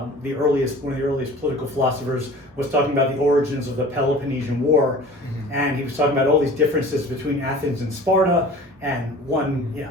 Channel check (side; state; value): both; normal; correlation 0.43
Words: the earliest political philosophers, was talking about the origins of the Peloponnesian War, and he was talking about all these differences between Athens and Sparta, and one